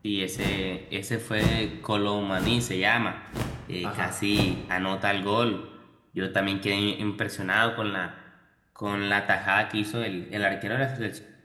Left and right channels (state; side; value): identical; both; correlation 1.00